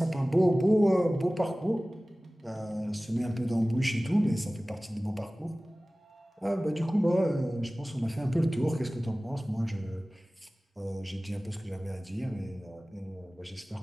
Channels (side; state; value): both; normal; correlation 0.98